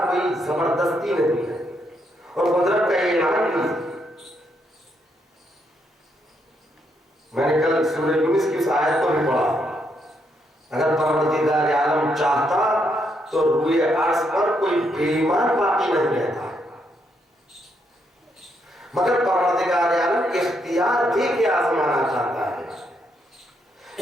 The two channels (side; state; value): both; normal; correlation 0.77